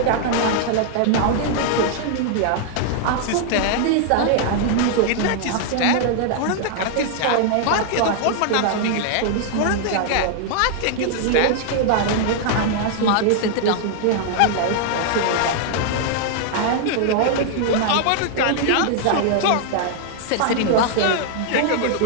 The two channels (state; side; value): different; both; correlation -0.01